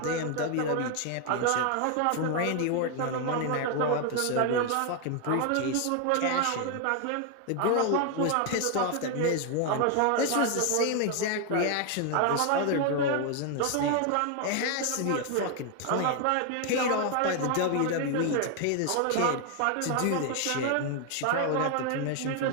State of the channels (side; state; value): both; different; correlation 0.01